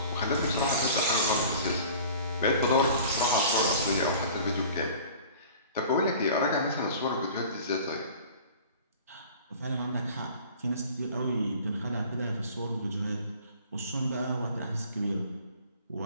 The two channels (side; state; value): both; inverted; correlation -0.44